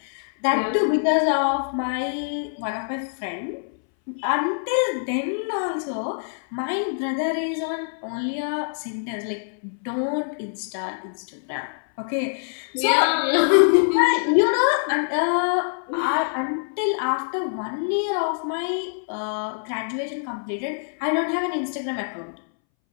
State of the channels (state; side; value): silent; right; 62 dB below the other